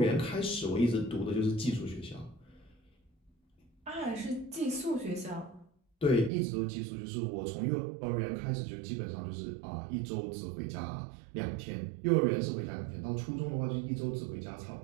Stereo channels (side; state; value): left; drops out; at 6.3 s